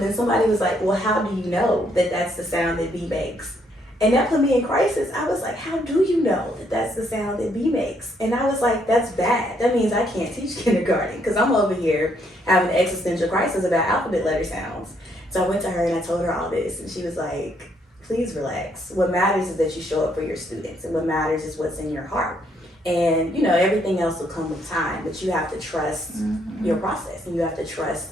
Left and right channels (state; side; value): normal; both; correlation 0.71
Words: then somebody was like, well, how do you know that that's the sound that B makes? And that put me in crisis. I was like, how do you know that that's the sound that B makes? And I was like, that's bad. That means I can't teach kindergarten, because I'm over here having an existential crisis about alphabet letter sounds. So I went to her and I told her all this, and she was like, please relax. What matters is that you show up for your students, and what matters is what's in your heart. And, you know, everything else will come with time, but you have to trust your process, and you have to trust,